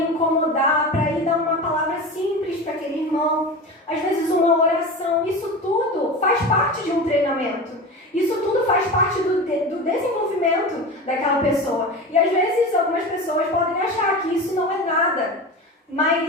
incomodar para ir dar uma palavra simples para aquele irmão. Às vezes, uma oração. Isso tudo faz parte de um treinamento. Isso tudo faz parte do desenvolvimento daquela pessoa. E, às vezes, algumas pessoas podem achar que isso não é nada.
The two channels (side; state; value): both; normal; correlation 0.28